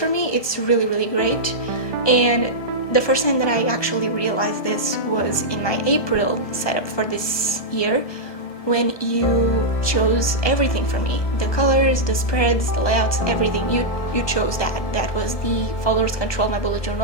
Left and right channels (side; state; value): right; late; 1.2 ms